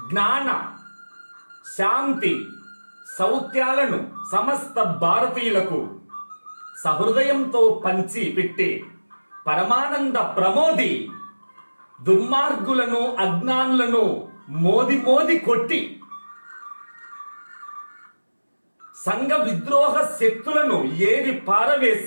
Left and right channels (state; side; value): inverted; both; correlation -1.00